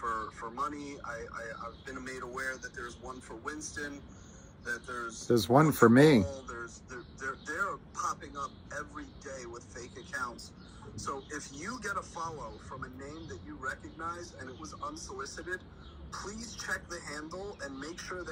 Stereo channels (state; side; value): identical; both; correlation 1.00